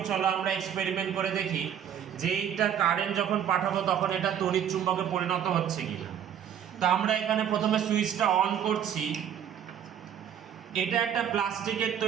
চলো আমরা এক্সপেরিমেন্ট করে দেখি যে এইটা কারেন্ট যখন পাঠাবো তখন এটা তড়িৎ চুম্বকে পরিণত হচ্ছে কিনা। তো আমরা এখানে প্রথমে সুইচটা অন করছি। এটা একটা প্লাস্টিকের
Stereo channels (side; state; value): left; quieter; 9.2 dB